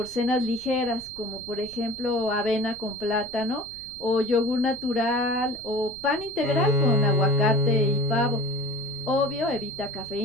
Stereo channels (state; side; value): noise; right; rumble, 21 dB below the sound